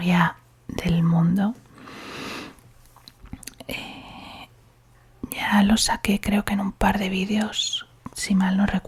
del Mundo. Ya lo saqué, creo que en un par de vídeos, si mal no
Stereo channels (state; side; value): identical; both; correlation 1.00